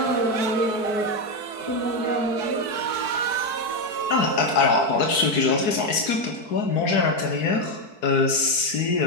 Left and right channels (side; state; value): right; late; 4.6 ms